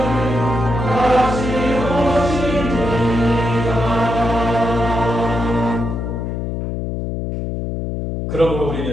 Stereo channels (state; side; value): noise; left; hum, 3 dB below the sound